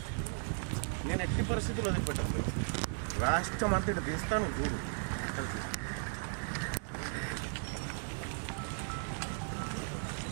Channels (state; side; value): silent; left; digital silence